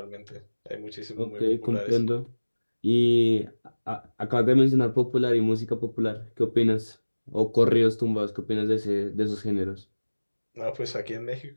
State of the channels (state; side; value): inverted; both; correlation -1.00